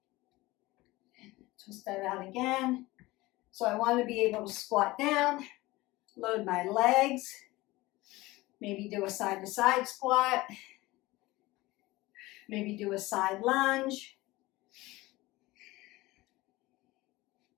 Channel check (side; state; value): right; quieter; 19.9 dB